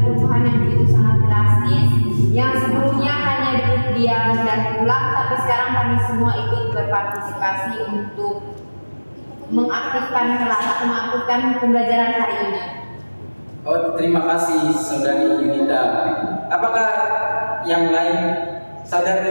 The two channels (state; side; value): inverted; both; correlation -1.00